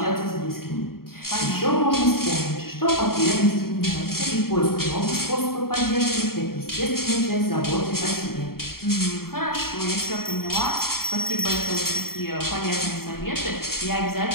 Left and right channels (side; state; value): right; late; 0.93 ms